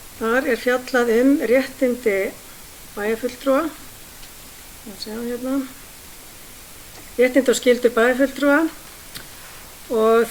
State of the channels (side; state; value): both; identical; correlation 1.00